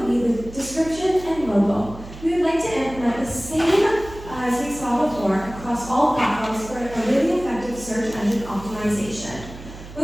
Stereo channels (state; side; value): noise; right; hum, 15 dB below the sound